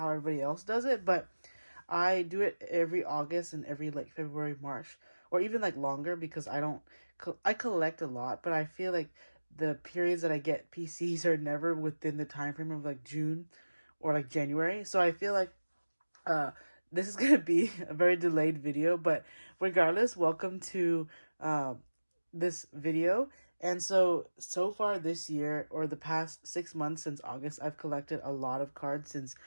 everybody else does it, but I do it every August and every like February, March, or even like longer because I collect a lot, but I feel like the periods that I get PCs are never within the time frame of like June or like January. So I feel like uh this is gonna be a very delayed video, but regardless, welcome to this video. And so far this year, or the past 6 months since August, I've collected a lot of cards since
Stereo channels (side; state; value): both; inverted; correlation -1.00